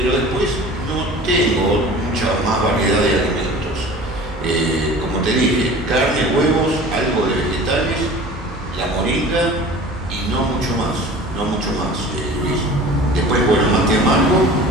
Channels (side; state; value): both; normal; correlation 0.41